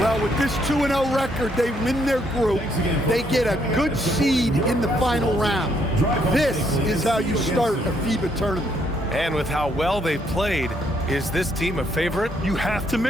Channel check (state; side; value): normal; both; correlation 0.71